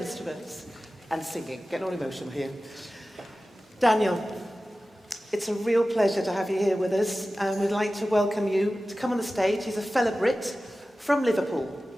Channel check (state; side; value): normal; both; correlation 0.95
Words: and singing. Getting all emotional here. Daniel, it's a real pleasure to have you here with us, and we'd like to welcome you to come on the stage. He's a fellow Brit from Liverpool,